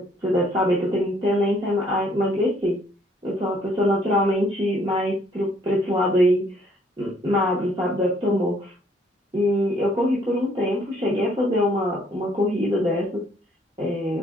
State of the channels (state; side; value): normal; both; correlation 0.64